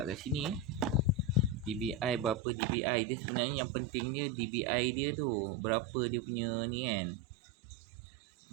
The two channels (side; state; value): left; drops out; at 2.4 s